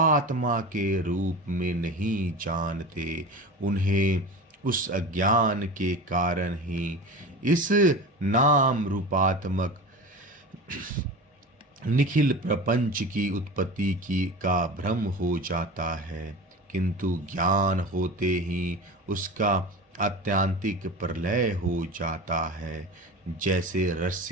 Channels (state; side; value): normal; both; correlation 0.31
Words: के रूप में नहीं जानते, उन्हें उस अज्ञान के कारण ही इस नाम रूपात्मक निखिल प्रपंच की उत्पत्ति की का भ्रम हो जाता है, किंतु ज्ञान होते ही उसका आत्यांतिक प्रलय हो जाता है। जैसे